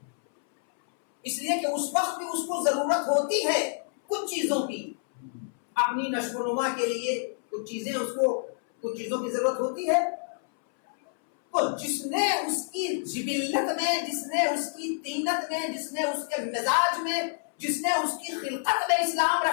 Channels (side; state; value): right; silent; 59 dB below the other